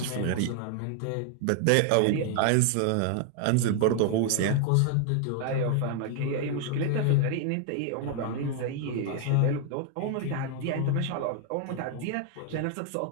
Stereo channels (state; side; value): different; both; correlation 0.00